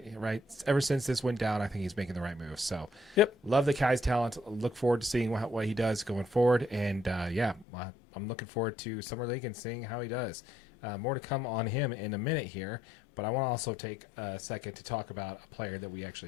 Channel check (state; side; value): drops out; right; at 7.7 s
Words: ever since this went down, I think he's making the right move. So, yep, love the guy's talent. Look forward to seeing what he does going forward, and I'm looking forward to Summer League and seeing how he does. More to come on him in a minute here, but I want to also take a second to talk about a player that we